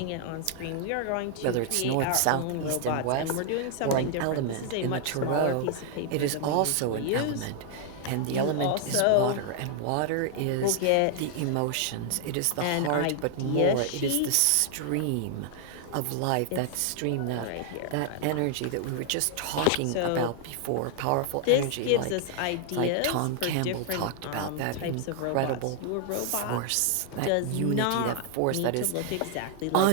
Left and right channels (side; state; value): both; different; correlation 0.00